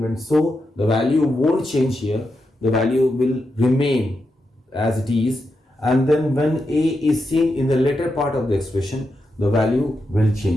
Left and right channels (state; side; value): normal; both; correlation 0.86